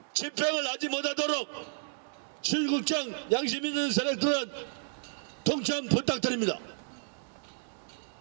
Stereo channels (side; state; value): left; silent; 57 dB below the other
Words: 집행을 하지 못하도록 실국장 양심 있는 세력들은 동참 부탁드립니다.